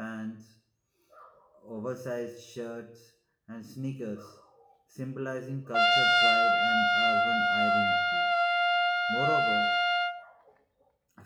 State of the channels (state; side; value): identical; both; correlation 1.00